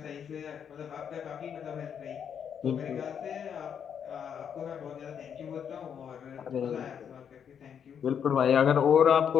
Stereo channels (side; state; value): right; quieter; 8.0 dB